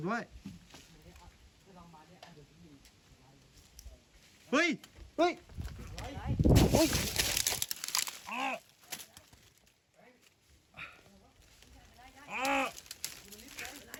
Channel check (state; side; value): identical; both; correlation 1.00